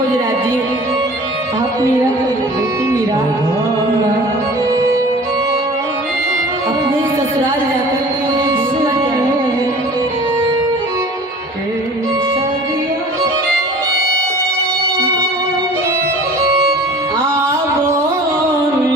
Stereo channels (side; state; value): both; normal; correlation 0.44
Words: जी, आप मीरा बेटी मीरा अपने ससुराल जाकर के